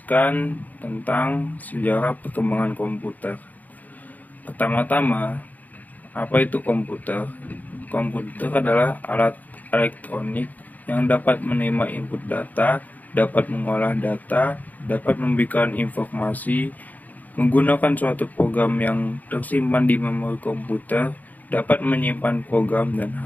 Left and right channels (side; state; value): right; late; 0.080 ms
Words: tentang sejarah perkembangan komputer. Pertama-tama, apa itu komputer? Komputer adalah alat elektronik yang dapat menerima input data, dapat mengolah data, dapat memberikan informasi, menggunakan suatu program yang tersimpan di memori komputer, dapat menyimpan program dan